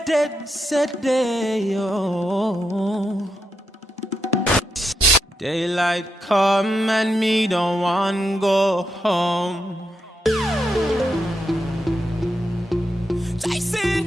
day-o. Daylight come and me don't want go home. Jason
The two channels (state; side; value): normal; both; correlation 0.83